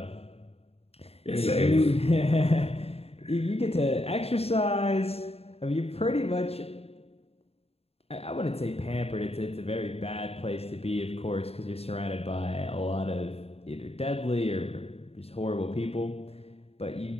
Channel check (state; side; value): late; right; 0.29 ms